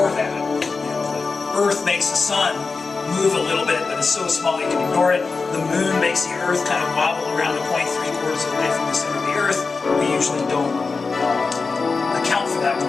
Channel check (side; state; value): right; quieter; 4.4 dB